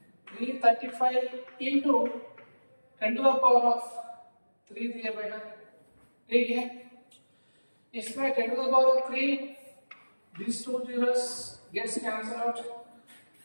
into 10 to the power of 3 दिए बेटा, ठीक है। इसमें 10 to the power of 3, these two zeros gets cancelled out,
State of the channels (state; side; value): inverted; both; correlation -1.00